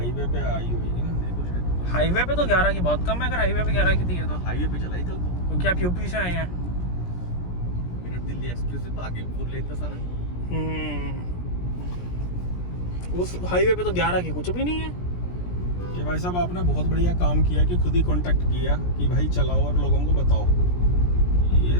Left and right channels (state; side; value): late; right; 17 ms